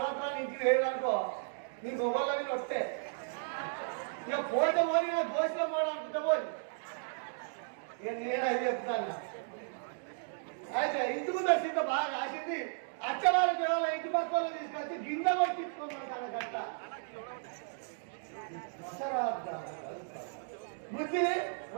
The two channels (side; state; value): left; silent; digital silence